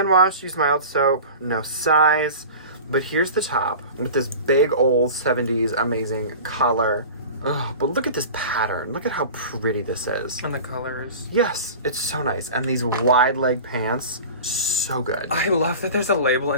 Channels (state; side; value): inverted; both; correlation -0.35